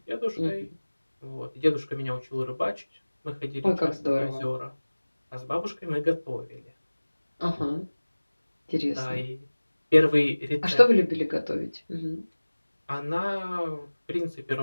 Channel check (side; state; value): both; inverted; correlation -1.00